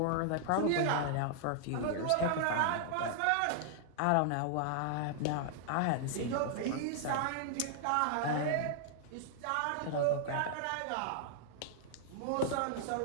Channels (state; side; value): different; both; correlation -0.01